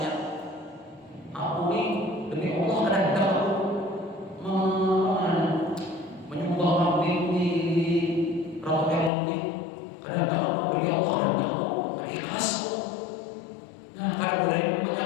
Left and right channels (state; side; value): drops out; right; at 9.1 s